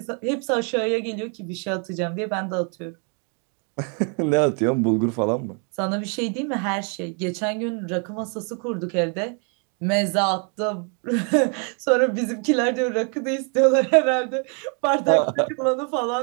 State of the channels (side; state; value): left; quieter; 39.0 dB